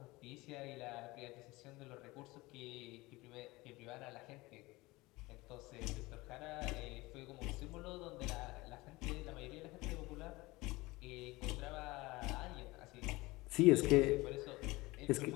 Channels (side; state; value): right; quieter; 21.4 dB